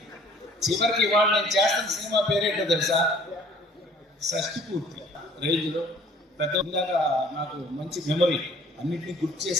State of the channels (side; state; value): both; normal; correlation 0.54